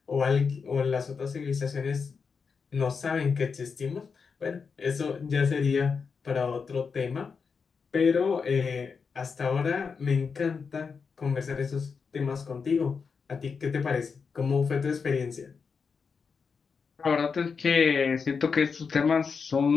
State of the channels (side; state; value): right; quieter; 5.5 dB